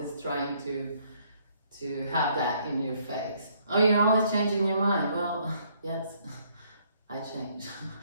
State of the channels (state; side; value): inverted; both; correlation -0.66